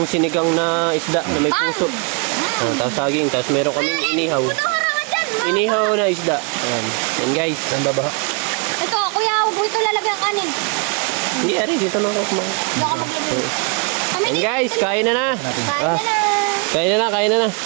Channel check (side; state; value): left; quieter; 35.2 dB